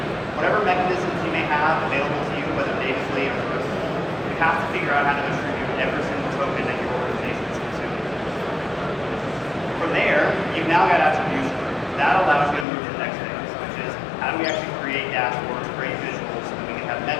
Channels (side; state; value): right; drops out; at 12.7 s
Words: Whatever mechanisms you may have available to you, whether natively or through a tool, you have to figure out how to attribute every single token that your organization is consuming. From there, you've now got attribution. That allows you to move to the next phase, which is how do we actually create dashboards, create visuals, so that we can have